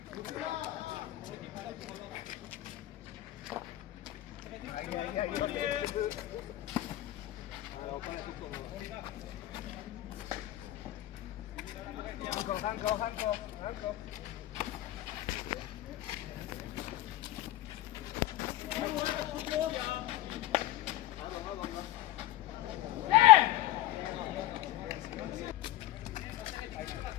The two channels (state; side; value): quieter; right; 15.5 dB